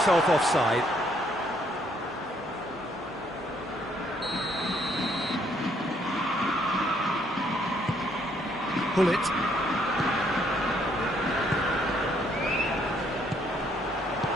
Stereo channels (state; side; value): normal; both; correlation 0.68